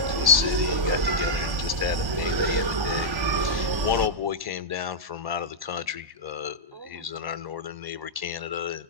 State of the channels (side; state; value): left; late; 1.1 ms